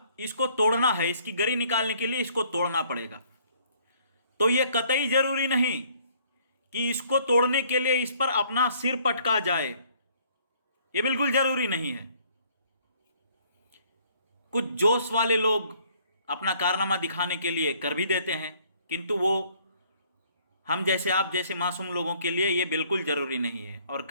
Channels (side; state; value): both; inverted; correlation -0.61